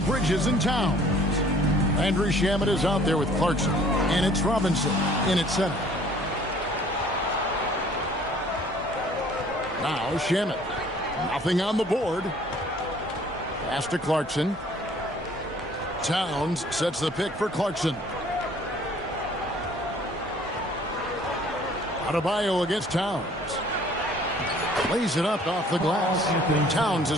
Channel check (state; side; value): normal; both; correlation 0.55